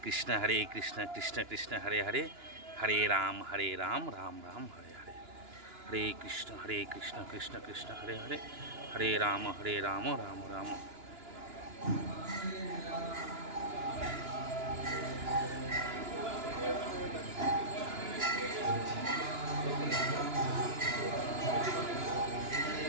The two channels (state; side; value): late; left; 2.9 ms